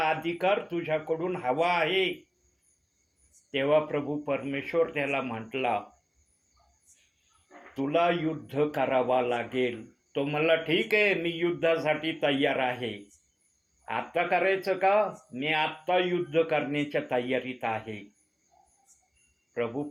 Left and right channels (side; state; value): both; identical; correlation 1.00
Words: अधिकार तुझ्याकडून हवा आहे. तेव्हा प्रभू परमेश्वर त्याला म्हटला, तुला युद्ध करावा लागेल. तो म्हणला, ठीक आहे, मी युद्धासाठी तयार आहे. आत्ता करायचं का? मी आत्ता युद्ध करण्याच्या तयारीत आहे. प्रभू